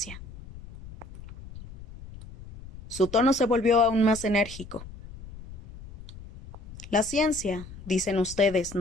Su tono se volvió aún más enérgico. La ciencia, dicen ustedes,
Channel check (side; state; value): left; noise; rumble, 16 dB below the sound